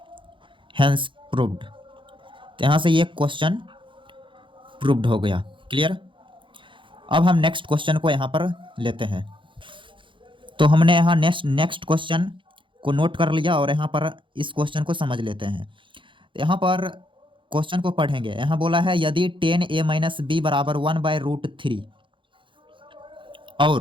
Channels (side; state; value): left; late; 0.24 ms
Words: हैंस प्रूव्ड। तो यहाँ से ये क्वेश्चन प्रूव्ड हो गया। क्लियर। अब हम नेक्स्ट क्वेश्चन को यहाँ पर लेते हैं। तो हमने यहाँ नेक्स्ट क्वेश्चन को नोट कर लिया और यहाँ पर इस क्वेश्चन को समझ लेते हैं। तो यहाँ पर क्वेश्चन को पढ़ेंगे। यहाँ बोला है यदि 10a - b बराबर 1/√3